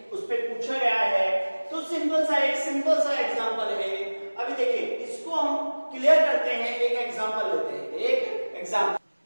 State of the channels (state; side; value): inverted; both; correlation -1.00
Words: उस पे पूछा गया है। तो सिंपल सा एग्जांपल है। अभी देखिए इसको हम क्लियर करते हैं, एक एग्जांपल लेते हैं, एक एग्जांपल